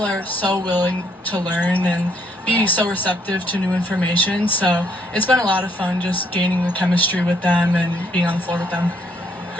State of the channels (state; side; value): normal; both; correlation 0.69